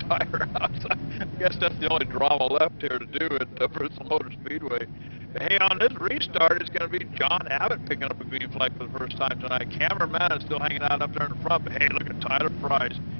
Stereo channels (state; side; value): inverted; both; correlation -1.00